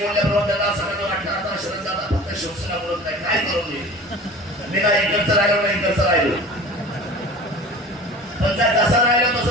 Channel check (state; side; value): normal; both; correlation 0.39